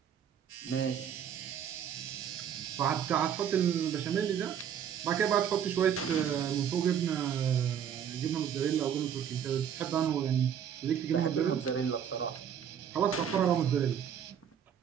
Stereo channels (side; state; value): left; quieter; 8.6 dB